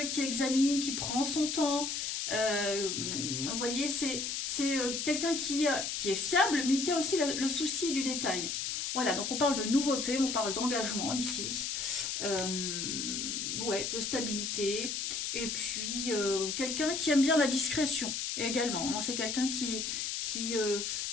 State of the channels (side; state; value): left; noise; hiss, 2 dB below the sound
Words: qui examine, qui prend son temps. Vous voyez, c'est quelqu'un qui est fiable, mais qui a aussi le souci du détail. Voilà, donc on parle de nouveauté, on parle d'engagement ici, ouais, de stabilité, et puis quelqu'un qui aime bien la discrétion également. Hein. C'est quelqu'un qui